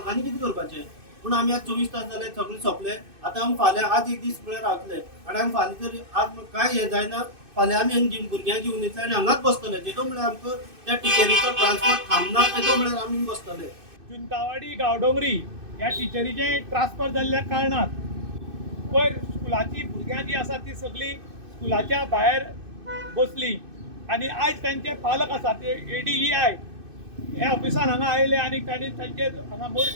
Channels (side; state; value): left; late; 2.6 ms